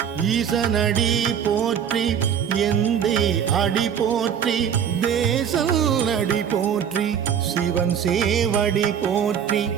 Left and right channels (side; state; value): left; quieter; 8.3 dB